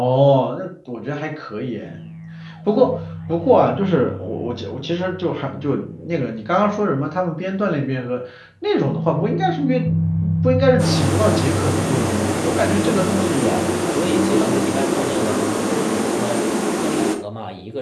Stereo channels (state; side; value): identical; both; correlation 1.00